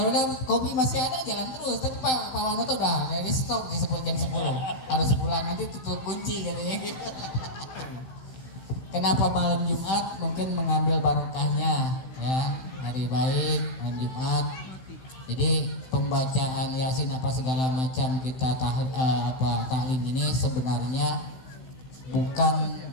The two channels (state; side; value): late; right; 15 ms